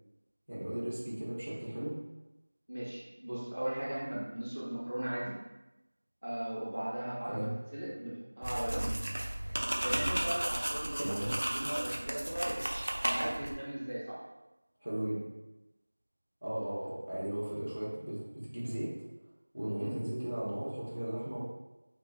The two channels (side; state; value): both; inverted; correlation -1.00